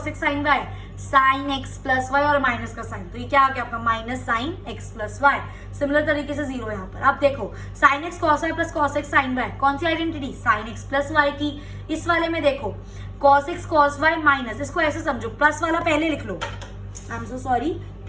x sin y, sin x plus y और माइनस का साइन, तो ये क्या आ गया आपका minus sin x plus y। Similar तरीके से 0 यहाँ पर। अब देखो sin x cos y plus cos x sin y, कौन सी identity, sin x plus y की। इस वाले में देखो cos x cos y minus, इसको ऐसे समझो, प्लस वाला पहले लिख लो, I am so sorry,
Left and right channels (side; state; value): both; identical; correlation 1.00